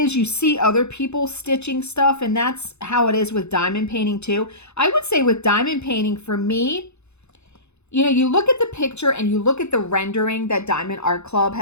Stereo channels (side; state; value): right; late; 0.81 ms